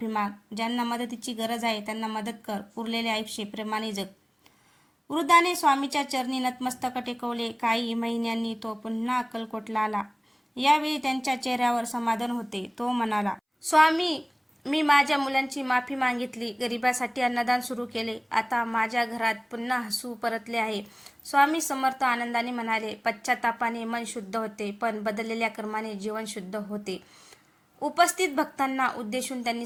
माग. ज्यांना मदतीची गरज आहे त्यांना मदत कर. उरलेले आयुष्य प्रेमाने जग. वृद्धाने स्वामीच्या चरणी नतमस्तक टेकवले. काही महिन्यांनी तो पुन्हा अक्कलकोटला आला. यावेळी त्यांच्या चेहऱ्यावर समाधान होते. तो म्हणाला, स्वामी, मी माझ्या मुलांची माफी मागितली, गरिबासाठी अन्नदान सुरू केले. आता माझ्या घरात पुन्हा हसू परतले आहे. स्वामी समर्थ आनंदाने म्हणाले, पश्चातापाने मन शुद्ध होते, पण बदललेल्या कर्माने जीवन शुद्ध होते. उपस्थित भक्तांना उद्देशून त्यांनी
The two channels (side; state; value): both; identical; correlation 1.00